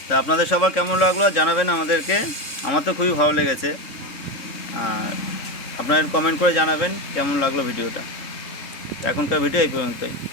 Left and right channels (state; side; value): late; right; 3.6 ms